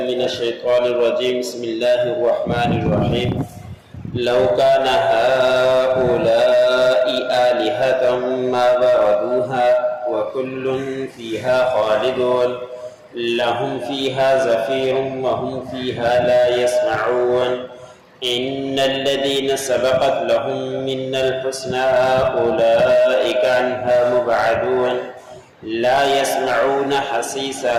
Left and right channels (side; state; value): both; identical; correlation 1.00